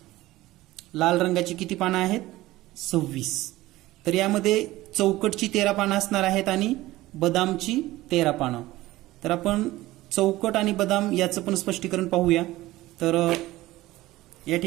लाल रंगाची किती पानं आहेत? 26. तर यामध्ये चौकटची 13 पानं असणार आहेत आणि बदामची 13 पानं. तर आपण चौकट आणि बदाम याचं पण स्पष्टीकरण पाहूया. तर या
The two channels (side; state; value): left; quieter; 17.4 dB